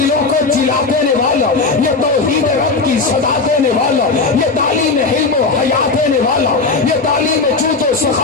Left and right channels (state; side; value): quieter; right; 4.0 dB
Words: کو جلا دینے والا، یہ توحید رب کی صدا دینے والا، یہ تعلیم علم و حیا دینے والا، یہ تعلیم جود و